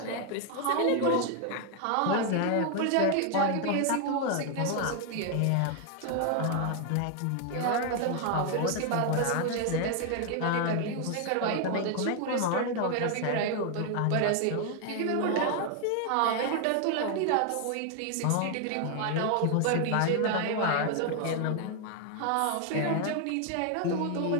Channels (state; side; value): different; both; correlation 0.00